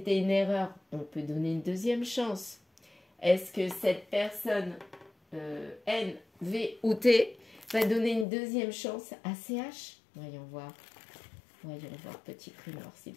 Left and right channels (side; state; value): right; drops out; at 8.2 s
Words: une erreur? On peut donner une deuxième chance. Est-ce que cette personne, N, V ou T, va donner une deuxième chance à CH? Voyons voir. Voyons voir, petit grimoire, s'il